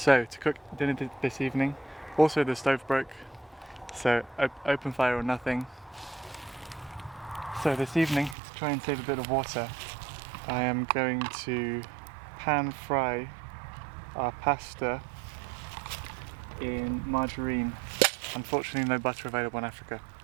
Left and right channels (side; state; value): left; drops out; at 8.3 s